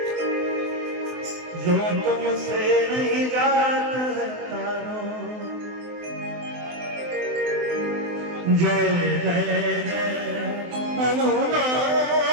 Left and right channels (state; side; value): late; left; 23 ms